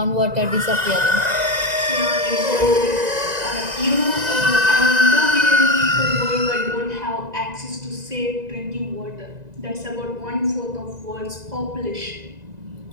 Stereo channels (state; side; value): late; left; 2.0 ms